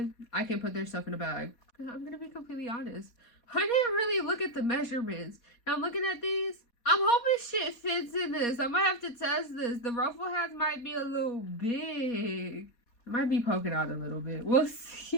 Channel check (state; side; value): late; right; 4.2 ms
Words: I can put their stuff in a bag. I'm gonna be completely honest. I didn't really look at the measurements. Now I'm looking at these. I'm hoping shit fits in this. I might have to test this. The ruffle hats might be a little big. It might be poking out a little bit. We'll